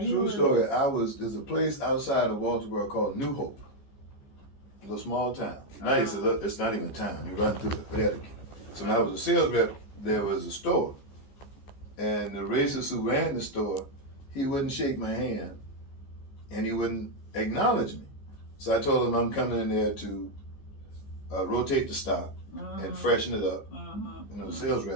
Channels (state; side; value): late; right; 14 ms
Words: story. There's a place outside of Walterboro called New Hope. A little small town. Now it's not even a town. You run through it. So when I was a sales rep, there was a store. And the racist who ran the store, he wouldn't shake my hand. And he wouldn't acknowledge me. So I told him I'm coming in there to rotate the stock and freshen it up, sales